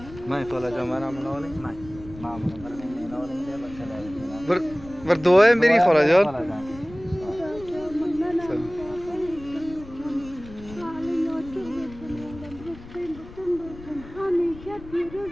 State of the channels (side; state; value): left; noise; rumble, 17 dB below the sound